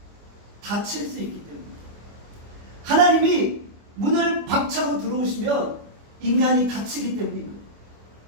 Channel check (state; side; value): late; left; 25 ms